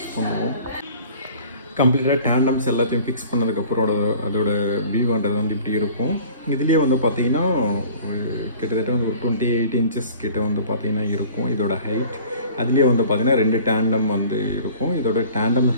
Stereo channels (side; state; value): both; inverted; correlation -0.47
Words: பண்ணுவோம். கம்ப்ளீட்டாக டேண்டம்ஸ் எல்லாத்தையும் ஃபிக்ஸ் பண்ணதுக்கப்புறம் அதோட வியூன்றது இப்படி இருக்கும். இதுலேயே பார்த்தீங்கன்னா கிட்டத்தட்ட ஒரு 28 இன்ச்சஸ் கிட்ட பார்த்தீங்கன்னா இருக்கும் இதோட ஹைட். அதுலேயே பார்த்தீங்கன்னா 2 டேண்டம் இருக்கும். இதோட டேண்டம்